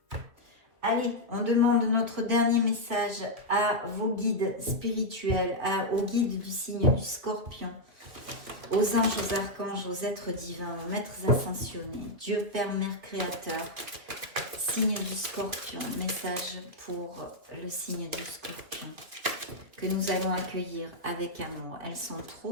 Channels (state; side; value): late; left; 2.5 ms